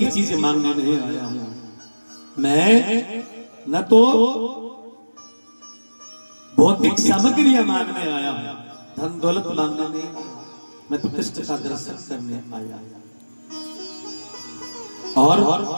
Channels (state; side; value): inverted; both; correlation -1.00